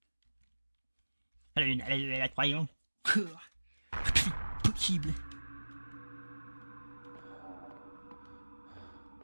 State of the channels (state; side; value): inverted; both; correlation -1.00